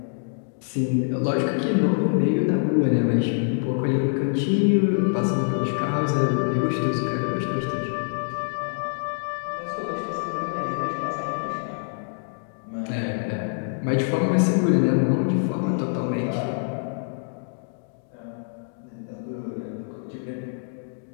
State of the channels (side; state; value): right; silent; digital silence